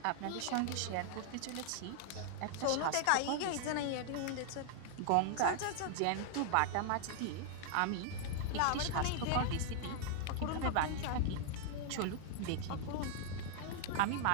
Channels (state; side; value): different; both; correlation 0.00